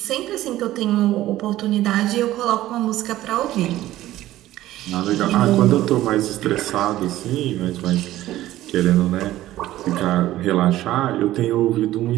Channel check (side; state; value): left; quieter; 14.9 dB